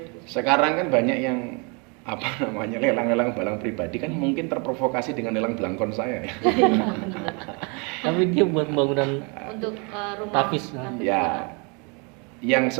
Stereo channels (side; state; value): left; quieter; 32.8 dB